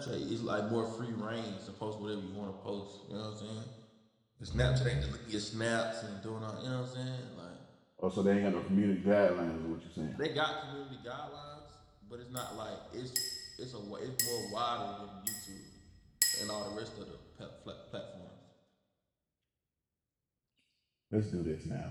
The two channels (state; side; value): identical; both; correlation 1.00